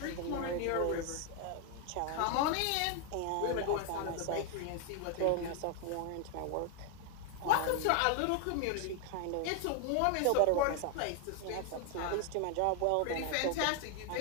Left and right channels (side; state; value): both; different; correlation 0.00